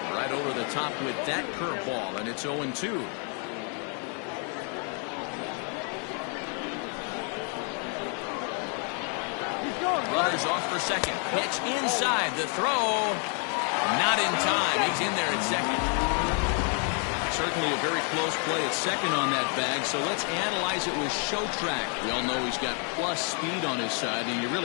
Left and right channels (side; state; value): right; quieter; 39.8 dB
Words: Right over the top with that curveball, and it's 0-2. Runners off for second. Pitch inside. The throw. Not in time. He's in there at second. Certainly a very close play at second on that bag, so let's analyze it with show track. We all know he's got plus speed on his side, and you